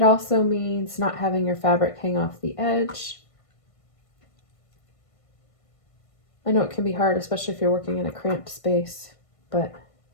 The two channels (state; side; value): late; right; 1.5 ms